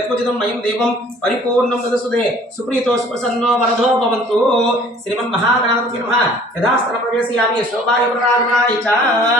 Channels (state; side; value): normal; both; correlation 0.53